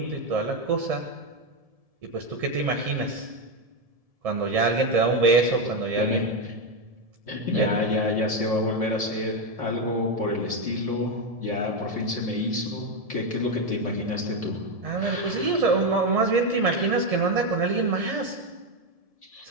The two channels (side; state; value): left; late; 1.7 ms